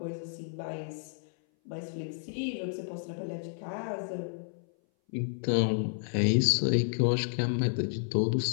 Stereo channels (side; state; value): right; silent; 57 dB below the other